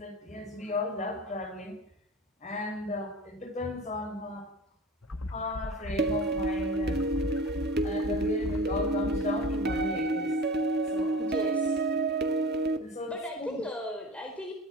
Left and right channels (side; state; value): both; normal; correlation 0.35